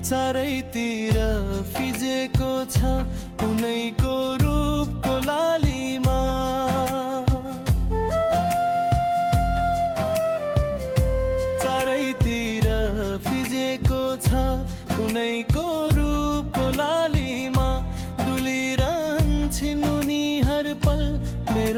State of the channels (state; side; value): identical; both; correlation 1.00